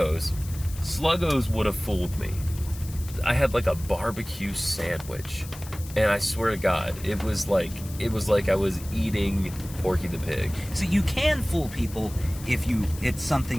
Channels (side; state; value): left; noise; hiss, 16 dB below the sound